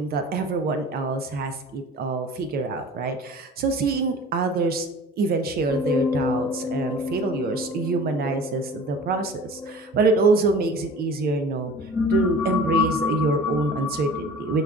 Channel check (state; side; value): normal; both; correlation 0.42